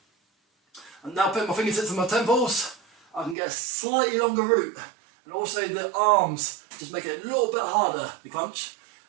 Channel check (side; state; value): left; drops out; at 3.4 s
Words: I'm now putting my fingertips on my temples. I can get a slightly longer route, and also the arms just make it a little bit harder to crunch.